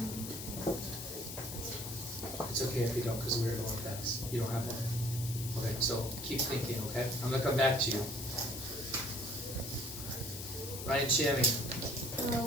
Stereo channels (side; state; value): left; noise; hiss, 8 dB below the sound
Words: It's okay if you don't, because we're going fast. You don't have one? Okay, so keep thinking, okay? I'm going to come back to you. Ryan Shammy,